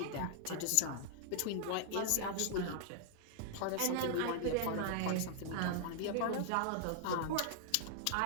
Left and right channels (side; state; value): both; different; correlation -0.01